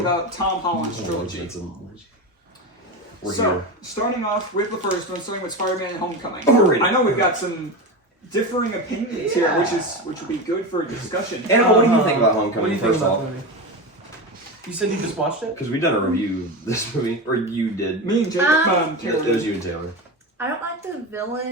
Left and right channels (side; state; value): both; normal; correlation 0.21